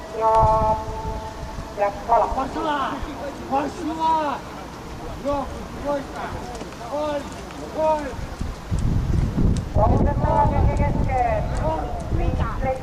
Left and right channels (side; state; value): both; identical; correlation 1.00